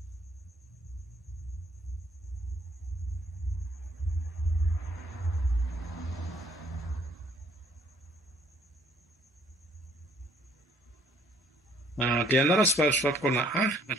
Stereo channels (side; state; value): both; normal; correlation 0.63